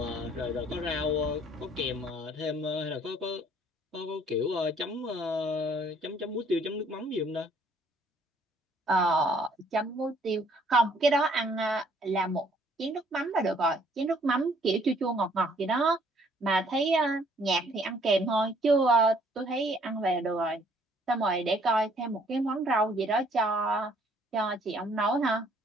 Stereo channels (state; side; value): normal; both; correlation 0.62